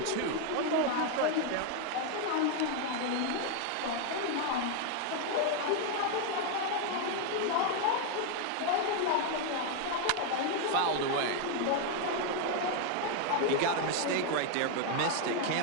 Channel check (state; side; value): different; both; correlation 0.01